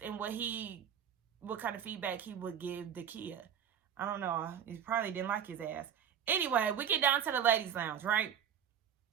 and what kind of feedback he would give Dakia. I don't know. He probably didn't like his ass. Anyway, we get down to the ladies' lounge, right?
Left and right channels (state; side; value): quieter; left; 8.7 dB